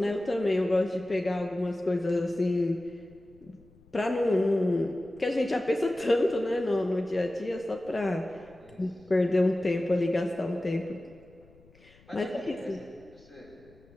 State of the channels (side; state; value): left; noise; rumble, 28 dB below the sound